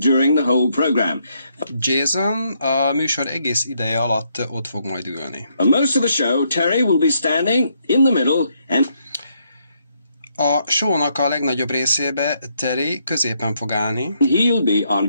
the whole program. Jason a műsor egész ideje alatt ott fog majd ülni. For most of the show, Terry will be standing in the middle and A show-nak a legnagyobb részébe Terry középen fog állni, he'll be on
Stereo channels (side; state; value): both; inverted; correlation -0.75